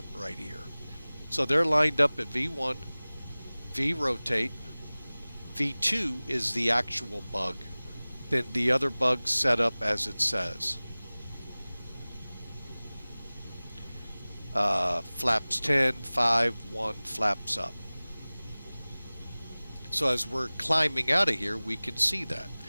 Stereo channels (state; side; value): inverted; both; correlation -0.99